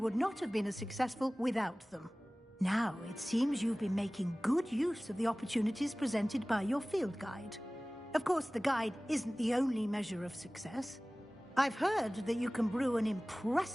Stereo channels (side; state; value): both; normal; correlation 0.98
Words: not have been as successful without them. Now, it seems you've been making good use of the opportunities presented by your field guide. Of course, the guide isn't the only measure of success. I've heard that you can brew an